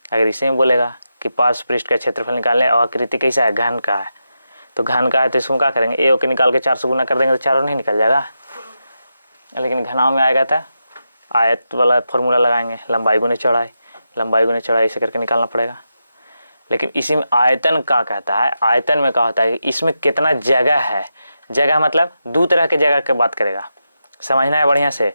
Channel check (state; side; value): inverted; both; correlation -0.88